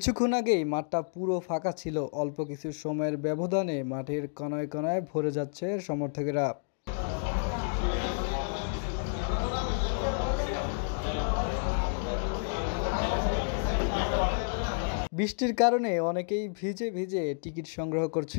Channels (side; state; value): right; silent; digital silence